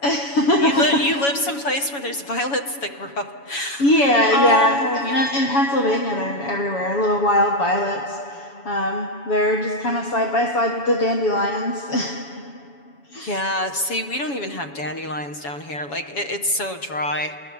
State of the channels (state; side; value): late; right; 7.1 ms